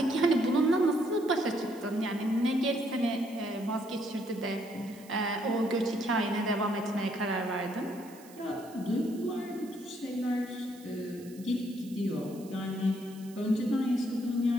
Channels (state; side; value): noise; right; hiss, 22 dB below the sound